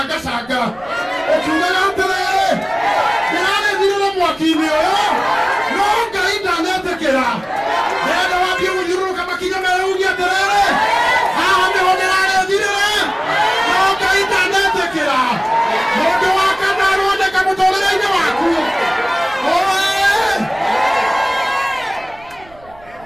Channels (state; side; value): noise; right; rumble, 25 dB below the sound